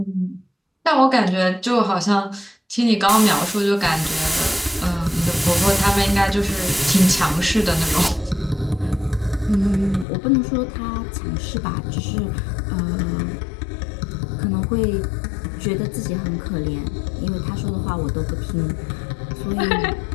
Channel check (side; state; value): right; drops out; at 10.1 s